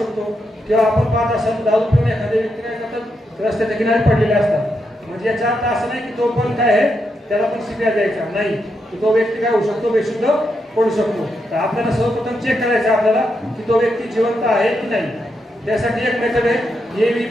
शकतो, किंवा आपण पाहत असाल दारू पिऊन एखाद्या व्यक्ती काय करतात रस्त्याच्या किनारी पडलेले असतात. म्हणजे याचा अर्थ असं नाही की तो पण काय आहे त्याला पण सीपीआर द्यायचा नाही, तो व्यक्ती काय होऊ शकतो बेशुद्ध पडू शकतो. तर आपल्याला सर्वप्रथम चेक करायचं आपल्याला की तो व्यक्ती जिवंत आहे की नाही. त्यासाठी एक मेथड आहे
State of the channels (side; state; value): both; normal; correlation 0.83